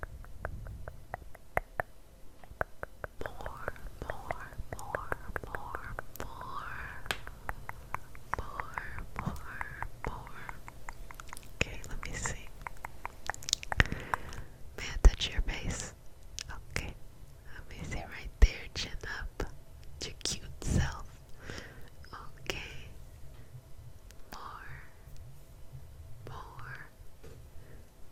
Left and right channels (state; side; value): identical; both; correlation 1.00